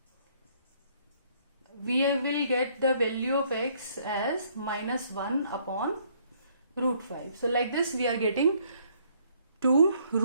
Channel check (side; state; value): both; inverted; correlation -0.65